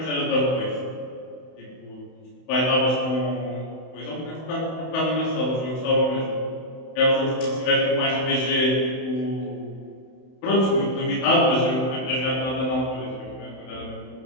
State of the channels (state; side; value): late; right; 31 ms